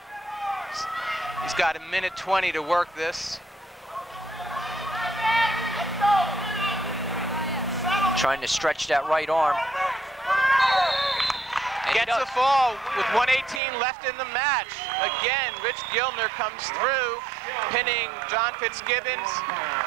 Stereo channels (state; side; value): drops out; left; at 13.6 s